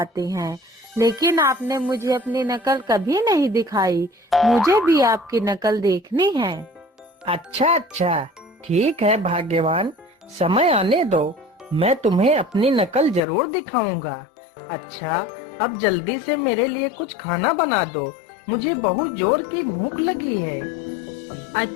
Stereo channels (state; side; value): drops out; right; at 13.2 s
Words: हैं, लेकिन आपने मुझे अपनी नकल कभी नहीं दिखाई। मुझे भी आपकी नकल देखनी है। अच्छा अच्छा, ठीक है भाग्यवान, समय आने दो, मैं तुम्हें अपनी नकल जरूर दिखाऊंगा। अच्छा, अब जल्दी से मेरे लिए कुछ खाना बना दो, मुझे बहुत जोर की भूख लगी है।